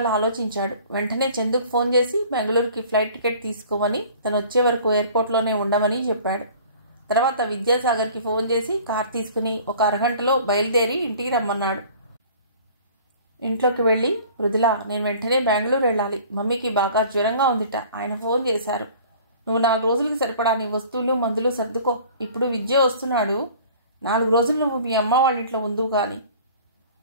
ఆలోచించాడు. వెంటనే చందుకు ఫోన్ చేసి బెంగళూరుకి ఫ్లైట్ టికెట్ తీసుకోమని, తను వచ్చే వరకు ఎయిర్పోర్ట్లోనే ఉండమని చెప్పాడు. తర్వాత విద్యాసాగర్కి ఫోన్ చేసి కార్ తీసుకుని ఒక అరగంటలో బయలుదేరి ఇంటికి రమ్మన్నాడు. ఇంట్లోకి వెళ్ళి, మృదుల, నేను వెంటనే బెంగళూరు వెళ్ళాలి. మమ్మీకి బాగా జ్వరంగా ఉందిట. ఆయన ఫోన్ చేశారు. నువ్వు 4 రోజులకి సరిపడా నీ వస్తువులు మందులు సర్దుకో. ఇప్పుడు విద్య వస్తున్నాడు. 4 రోజులు నువ్వు మీ అమ్మ వాళ్ళ ఇంట్లో ఉందువు కానీ.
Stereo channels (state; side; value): inverted; both; correlation -0.48